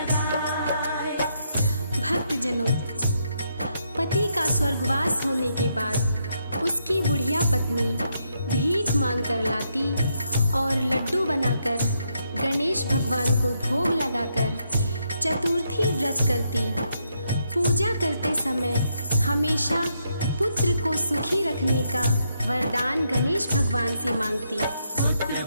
भक्तजनों, पति का स्वर्गवास होने के बाद उसकी बुढ़िया पत्नी भीख मांग कर लाती और लड्डू बनाकर गणेश भगवान को भोग लगाकर चतुर्थी व्रत करती। पूजा करते समय हमेशा पुत्र को सुखी रखने का वरदान गणेश भगवान से मांगती। पुत्र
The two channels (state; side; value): inverted; both; correlation -0.78